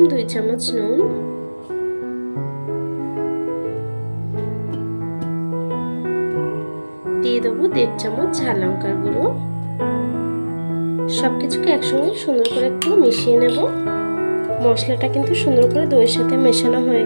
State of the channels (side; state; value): both; inverted; correlation -1.00